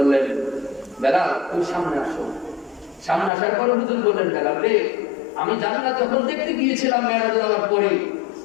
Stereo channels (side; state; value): right; drops out; at 3.3 s